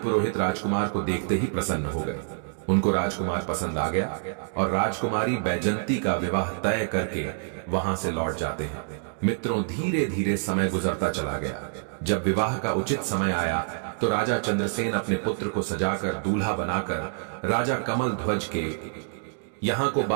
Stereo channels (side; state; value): left; silent; digital silence